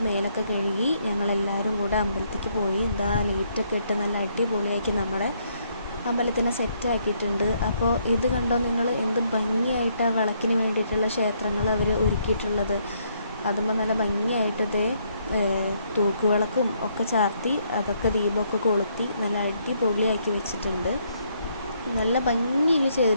മേലൊക്കെ കഴുകി ഞങ്ങളെല്ലാവരും കൂടെ അമ്പലത്തിലേക്ക് പോയി. ഇതാ ലൈറ്റൊക്കെ ഇട്ട് നല്ല അടിപൊളിയാക്കി നമ്മുടെ അമ്പലത്തിനെ സെറ്റാക്കിയിട്ടുണ്ട്. അപ്പോൾ ഇത് കണ്ടോ നിങ്ങൾ, എന്ത് ഭംഗിയായിട്ടാണ് വിളക്കിന് വേണ്ടിയിട്ടുള്ള ക്ഷേത്രങ്ങൾ അവർ ഒരുക്കിയിട്ടുള്ളത്. അതുമ്പോൾ നല്ല ഭംഗിയായിട്ട് ഇതേ തൂക്കുവിളക്കും ഒക്കെ ചാർത്തി അതൊക്കെ ദീപമൊക്കെ കൊളുത്തി നല്ല അടിപൊളിയാക്കി വെച്ചിട്ടുണ്ട്. നല്ല ഭംഗിയിൽ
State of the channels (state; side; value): inverted; both; correlation -0.72